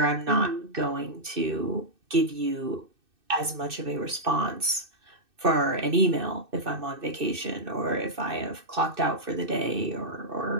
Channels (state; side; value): late; left; 2.6 ms